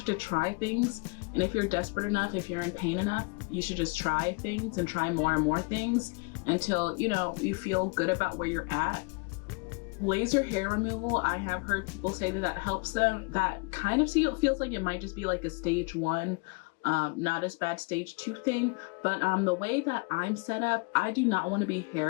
to try things. And if you're desperate enough, if you're in pain enough, you should just try things and try more and more things until, you know, you feel good about where you're at. Laser hair removal, I have heard people say that that helps them. That kind of feels like it might just be like a stage 1, not as bad stage 2 thing. But the way that I'm set up, I do not want to be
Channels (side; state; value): right; quieter; 31.8 dB